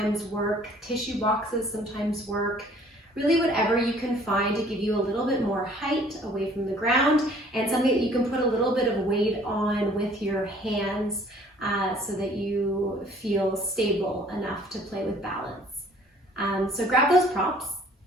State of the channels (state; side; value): normal; both; correlation 0.55